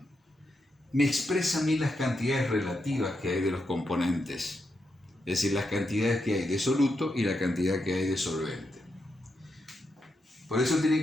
me expresa a mí las cantidades relativas que hay de los componentes. Es decir, las cantidades que hay de soluto y la cantidad que hay de solvente. Por eso tiene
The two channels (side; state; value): both; normal; correlation 0.84